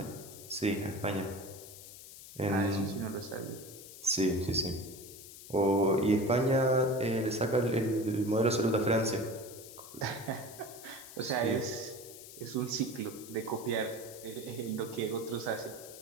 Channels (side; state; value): left; noise; hiss, 15 dB below the sound